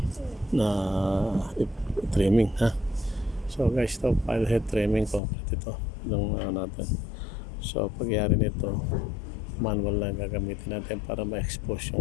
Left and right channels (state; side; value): drops out; right; at 5.2 s